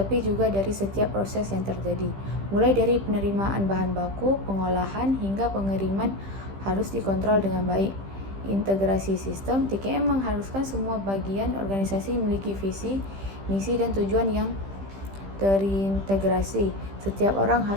juga dari setiap proses yang terjadi. Mulai dari penerimaan bahan baku, pengolahan, hingga pengiriman harus dikontrol dengan baik. Integrasi sistem. TKM mengharuskan semua bagian organisasi memiliki visi, misi, dan tujuan yang terintegrasi. Setiap orang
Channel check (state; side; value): late; left; 15 ms